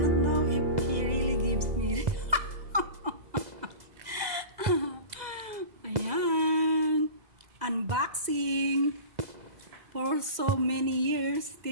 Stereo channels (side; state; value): left; late; 2.0 ms